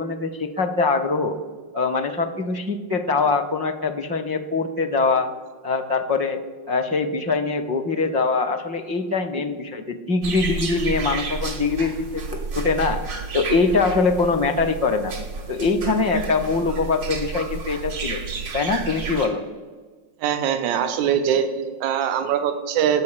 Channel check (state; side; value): late; left; 5.6 ms